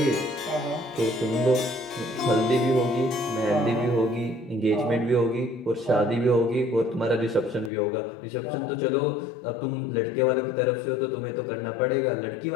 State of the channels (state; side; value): drops out; right; at 7.7 s